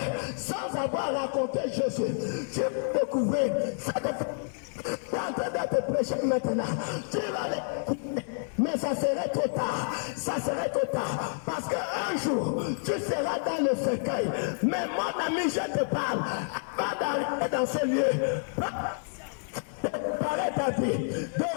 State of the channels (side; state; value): right; silent; 56 dB below the other